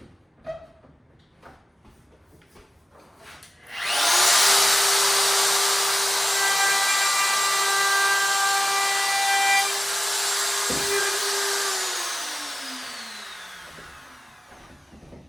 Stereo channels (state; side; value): normal; both; correlation 0.96